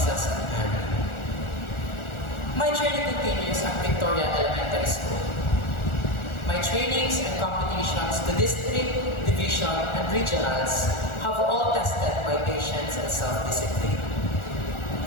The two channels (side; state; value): right; late; 1.4 ms